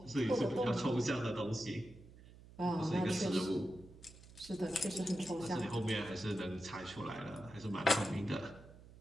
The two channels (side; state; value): right; noise; hum, 20 dB below the sound